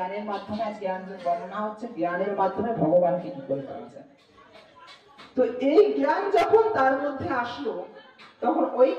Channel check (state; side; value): identical; both; correlation 1.00